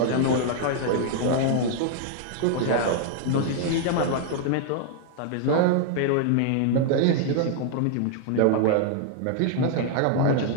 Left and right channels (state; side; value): different; both; correlation 0.00